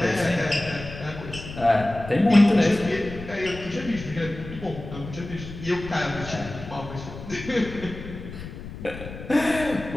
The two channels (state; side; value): noise; left; rumble, 12 dB below the sound